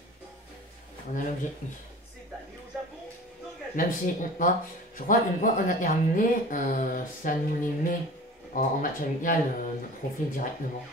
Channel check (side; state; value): both; normal; correlation 0.40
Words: On a l'objectif. Même si, je crois qu'une fois on a terminé, ça nous les met en match amical, notre profil directement.